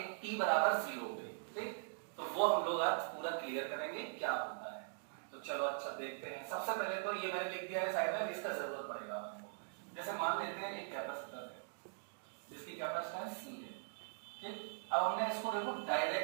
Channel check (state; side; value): silent; left; digital silence